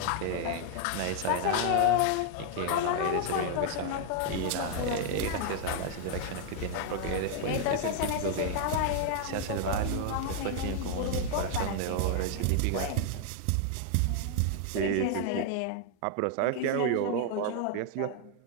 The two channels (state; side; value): different; both; correlation 0.00